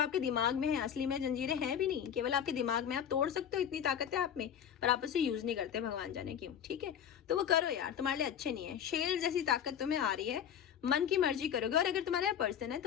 दिमाग में है, असली में जंजीरें हैं भी नहीं, केवल आपके दिमाग में, आप तोड़ सकते हो, इतनी ताकत है आप में, पर आप उसे यूज नहीं करते, भगवान जाने क्यों, ठीक है। तो वो करो यार, तुम्हारे लिए अच्छे नहीं है, शेर जैसी ताकत तुम्हें आ रही है, मन की मर्जी करोगे। और अगर तुम्हारा पर्सन है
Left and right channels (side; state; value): right; quieter; 9.0 dB